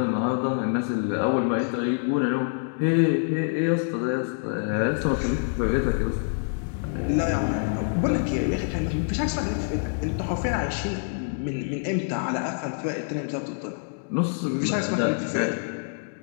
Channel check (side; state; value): right; silent; digital silence